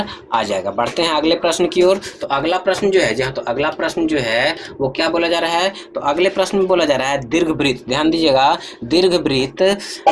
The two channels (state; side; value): identical; both; correlation 1.00